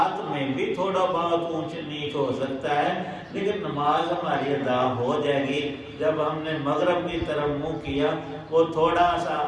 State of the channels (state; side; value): identical; both; correlation 1.00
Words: میں بھی تھوڑا بہت اونچ نیچ ہو سکتا ہے، لیکن نماز ہماری ادا ہو جائے گی۔ جب ہم نے مغرب کی طرف منہ کیا، وہ تھوڑا سا